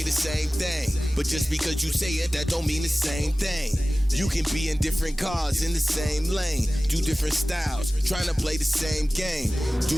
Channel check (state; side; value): normal; both; correlation 0.97